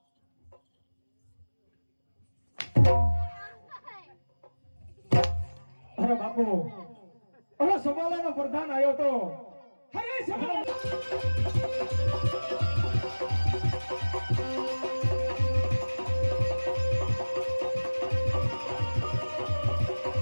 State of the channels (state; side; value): inverted; both; correlation -1.00